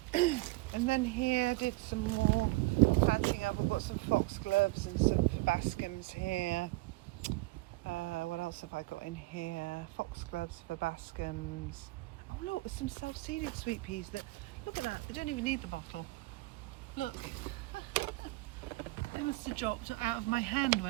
And then here I did some more planting up. I've got some foxgloves and some verbascums here. What else have I got in here? Foxgloves, verbascums. Oh look, there's some self-seeded sweet peas that, look at that, they don't even need the bottle. Look. They must have dropped out of my hand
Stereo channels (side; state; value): left; quieter; 21.5 dB